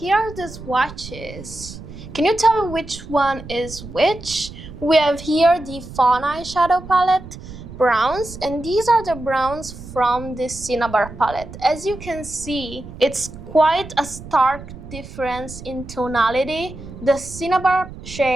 are the swatches. Can you tell me which one is which? We have here the Fawn Eyeshadow palette browns, and these are the browns from the Cinnabar palette. As you can see, it's quite a stark difference in tonality. The Cinnabar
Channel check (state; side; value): noise; right; rumble, 14 dB below the sound